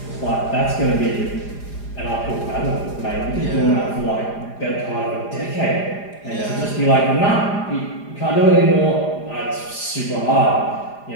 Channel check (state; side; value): late; right; 4.9 ms